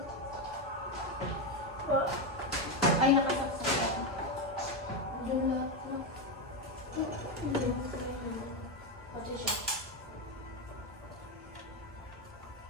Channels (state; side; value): normal; both; correlation 0.09